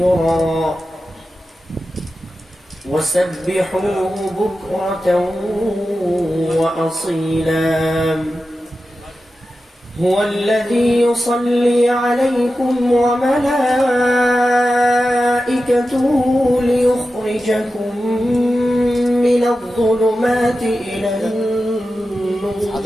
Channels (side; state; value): both; normal; correlation 0.92